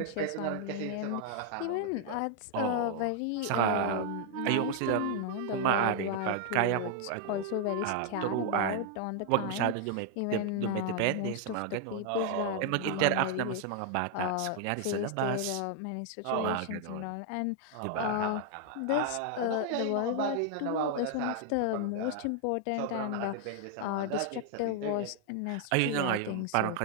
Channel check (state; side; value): different; both; correlation 0.00